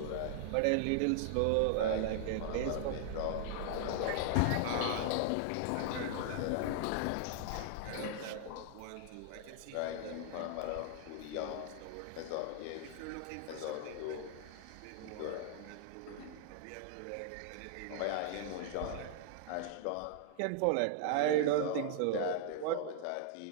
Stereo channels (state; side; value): different; both; correlation 0.00